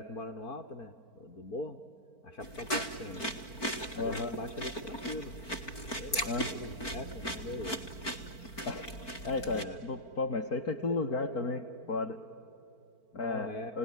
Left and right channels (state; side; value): late; right; 4.5 ms